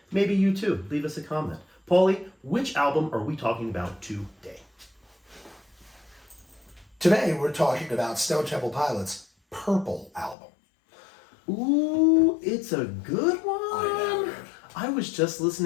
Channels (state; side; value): drops out; right; at 10.4 s